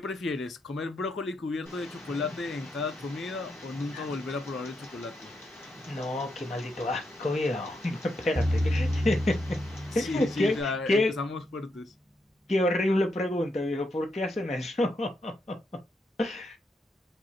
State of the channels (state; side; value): normal; both; correlation 0.81